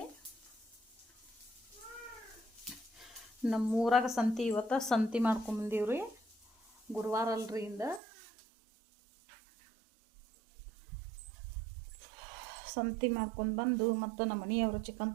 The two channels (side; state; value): left; drops out; at 8.0 s